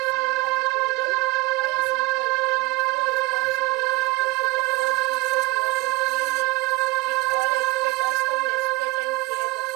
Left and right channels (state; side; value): quieter; left; 23.9 dB